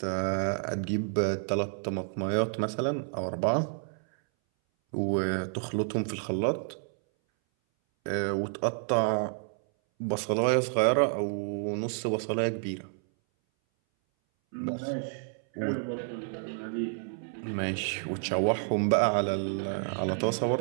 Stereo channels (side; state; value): left; silent; 58 dB below the other